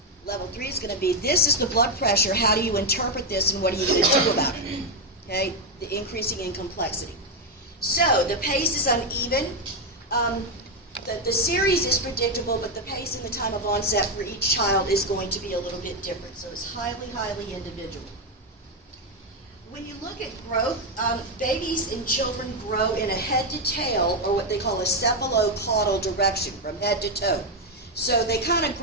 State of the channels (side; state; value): both; normal; correlation 0.05